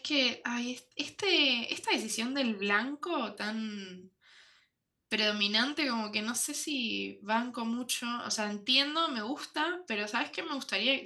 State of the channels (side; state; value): both; identical; correlation 1.00